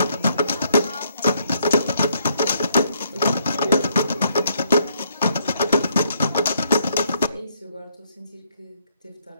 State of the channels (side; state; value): both; inverted; correlation -0.71